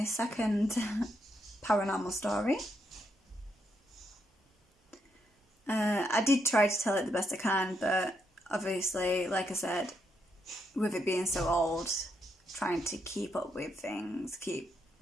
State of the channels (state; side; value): normal; both; correlation 0.79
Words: second paranormal story. I did try to tell it the best I can, but obviously, like I said, with it being so old, trying to keep up with things, keep